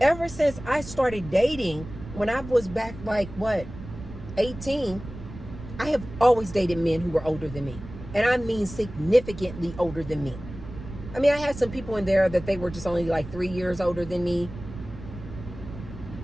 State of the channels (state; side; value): noise; right; rumble, 13 dB below the sound